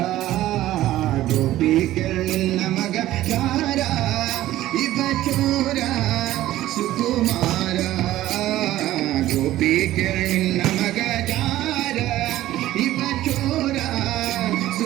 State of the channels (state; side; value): quieter; left; 14.7 dB